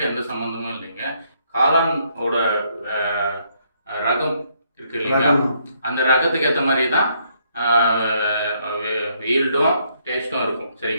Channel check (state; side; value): inverted; both; correlation -0.71